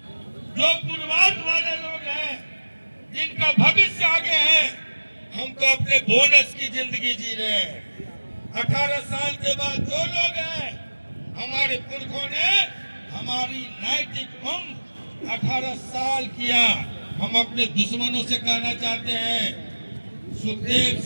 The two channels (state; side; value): inverted; both; correlation -1.00